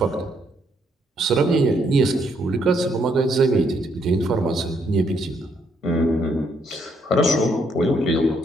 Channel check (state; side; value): normal; both; correlation 0.72